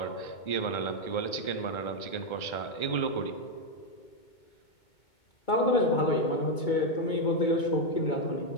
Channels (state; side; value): late; right; 2.2 ms